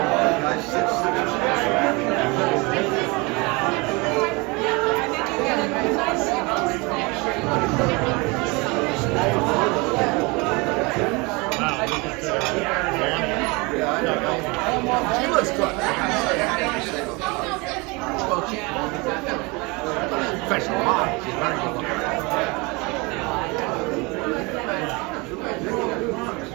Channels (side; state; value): left; quieter; 26.9 dB